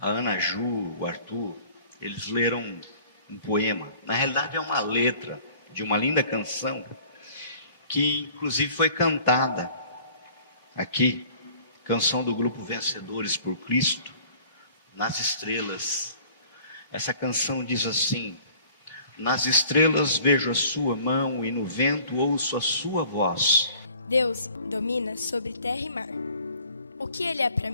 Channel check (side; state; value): both; inverted; correlation -0.51